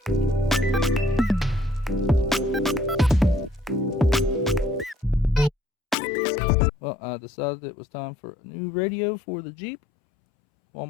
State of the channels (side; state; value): right; drops out; at 6.0 s